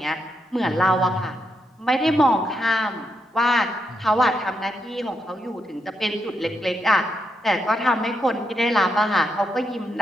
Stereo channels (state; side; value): normal; both; correlation 0.81